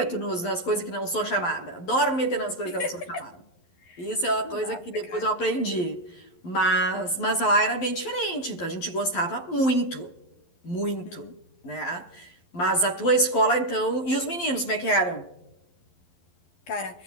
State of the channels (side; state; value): right; late; 11 ms